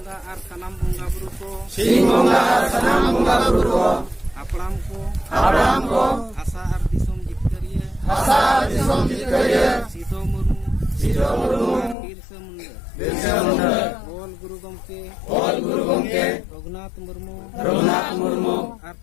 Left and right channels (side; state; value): right; drops out; at 12.0 s